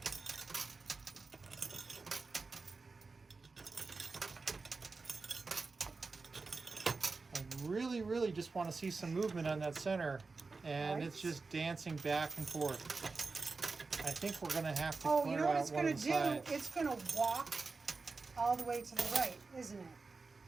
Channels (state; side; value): quieter; left; 4.1 dB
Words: I really just want to see some movement on that center, and Right. it's just dancing back and forth. I think we're gonna have to Oh, clear you know what out it's one going of to the do? sides. It's going to walk all the way to the right, isn't it?